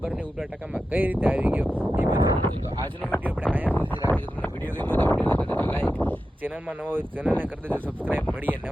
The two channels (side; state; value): both; normal; correlation 0.91